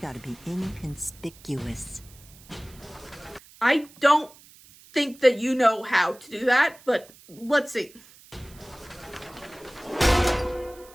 be inconspicuous. I don't think that you know how to do that, but let's see.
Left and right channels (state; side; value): noise; right; hiss, 23 dB below the sound